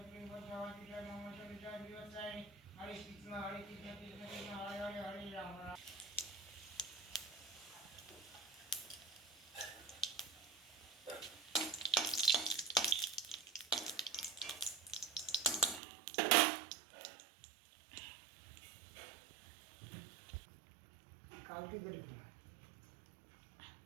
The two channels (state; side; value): drops out; left; at 15.8 s